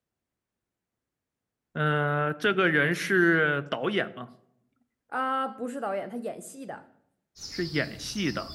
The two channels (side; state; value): both; identical; correlation 1.00